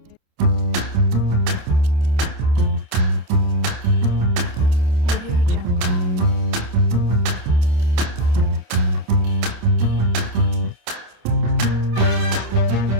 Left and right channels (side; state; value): left; late; 27 ms